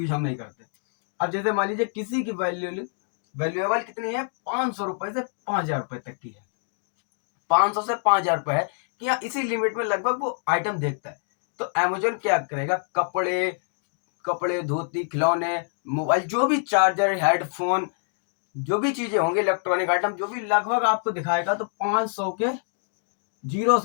हम नहीं करते। अब जैसे मान लीजिए किसी की वैल्यूएबल कितनी है, 500 रुपए से 5,000 रुपए तक की है। 500 से 5,000 रुपए है कि हाँ, इसी लिमिट में लगभग वो आइटम देखता है। तो अमेजोन क्या करेगा, कपड़े धोती खिलौने मोबाइल, जो भी चार्जर हेडफोन, जो भी चीजें होंगी इलेक्ट्रॉनिक आइटम, जो भी लगभग आपको दिखाएगा। तो 500 के जीरो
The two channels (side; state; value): right; silent; 61 dB below the other